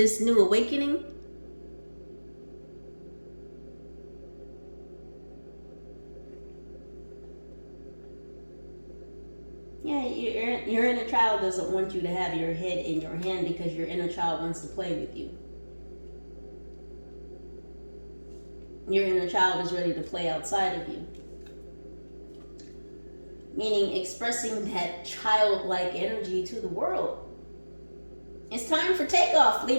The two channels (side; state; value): both; inverted; correlation -1.00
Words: new awakening. Yeah, your inner child doesn't want you to have your head in your hand because your inner child wants to play with you. Your inner child is ready to play outside of you. Meaning expressing that childlike energy to the world. It's time for takeoff,